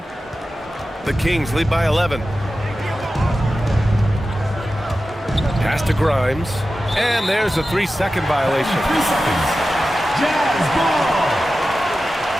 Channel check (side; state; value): both; normal; correlation 0.93